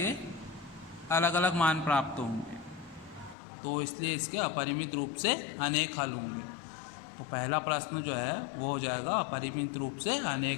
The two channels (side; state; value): right; drops out; at 3.4 s